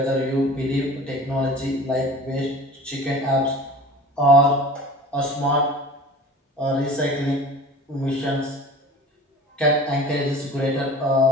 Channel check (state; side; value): normal; both; correlation 0.40